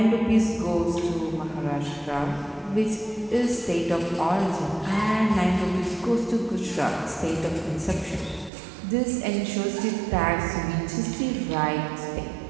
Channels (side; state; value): left; drops out; at 8.5 s